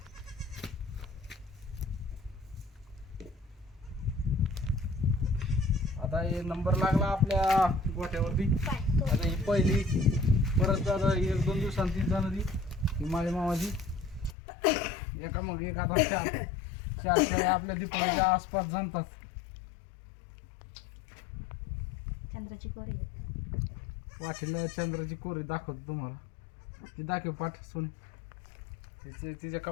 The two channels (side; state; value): right; drops out; at 14.4 s